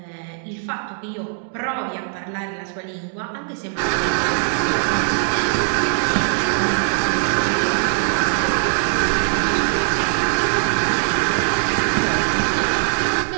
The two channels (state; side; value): silent; left; digital silence